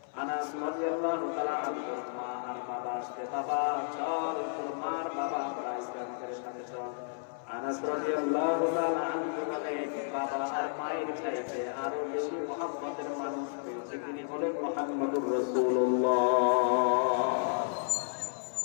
আনাস রাদিয়াল্লাহু তাআলা আনহু মা আর বাবা আসতে, বাবা চল তোর মার বাবা আমরা ইসলামের সাথে চল। আনাস রাদিয়াল্লাহু তাআলা আনহু বলেন, বাবা আর মায়ের চাইতে আরো বেশি মহব্বতের মানুষ পেয়েছে, তিনি হলেন মুহাম্মদুর রাসূলুল্লাহ।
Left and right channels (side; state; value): right; silent; 56 dB below the other